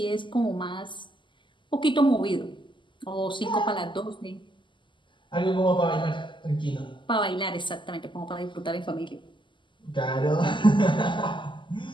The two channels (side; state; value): right; late; 0.24 ms